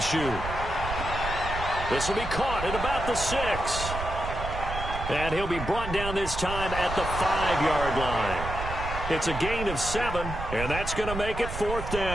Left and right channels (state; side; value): noise; right; rumble, 7 dB below the sound